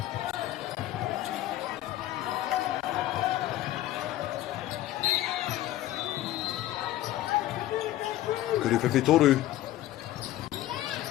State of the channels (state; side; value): quieter; right; 14.6 dB